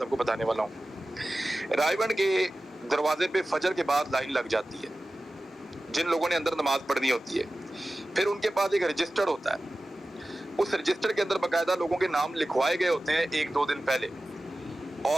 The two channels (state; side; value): normal; both; correlation 0.95